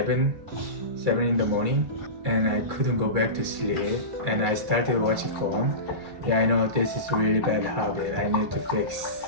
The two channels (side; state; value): left; late; 2.3 ms